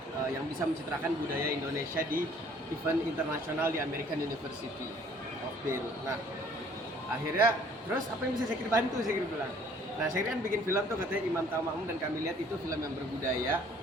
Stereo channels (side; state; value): both; normal; correlation 0.57